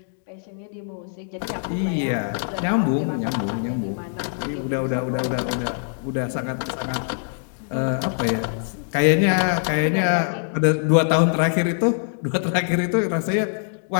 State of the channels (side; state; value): right; silent; digital silence